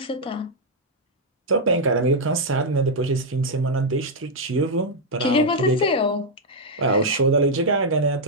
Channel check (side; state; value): both; normal; correlation -0.03